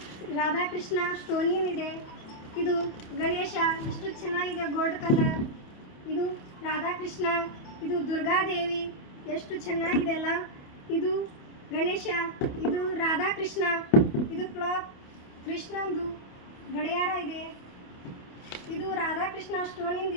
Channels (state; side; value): late; right; 28 ms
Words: ರಾಧಾಕೃಷ್ಣ ಸ್ಟೋನಿನ್ ಇದೆ. ಇದು ಗಣೇಶ ಎಷ್ಟು ಚೆನ್ನಾಗಿದೆ, ಗೋಲ್ಡ್ ಕಲರ್. ಇದು ರಾಧಾಕೃಷ್ಣ, ಇದು ದುರ್ಗಾದೇವಿ ಎಷ್ಟು ಚೆನ್ನಾಗಿದೆ ಅಲ್ಲ. ಇದು ಗಣೇಶ, ಇದು ರಾಧಾಕೃಷ್ಣ, ಇದು ಕ್ಲಾಕ್, ಕೃಷ್ಣಂದು ಗಡಿಯಾರ ಇದೆ. ಇದು ರಾಧಾಕೃಷ್ಣ ಸ್ಟೋನಿಂದ